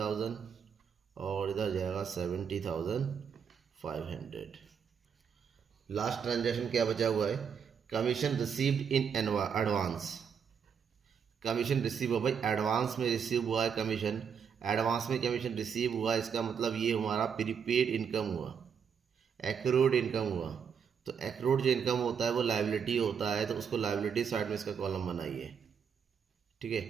और इधर जाएगा 70,500। लास्ट ट्रांजेक्शन क्या बचा हुआ है, commission received in advance. Commission receive हुआ भाई, एडवांस में रिसीव हुआ है कमीशन, एडवांस में कमीशन रिसीव हुआ, इसका मतलब ये हमारा प्रीपेड इनकम हुआ, एक्रूड इनकम हुआ। तो एक्रूड जो इनकम होता है वो लायबिलिटी होता है, तो उसको लायबिलिटी साइड में इसका कॉलम बनाइए। ठीक है,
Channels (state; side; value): quieter; left; 7.1 dB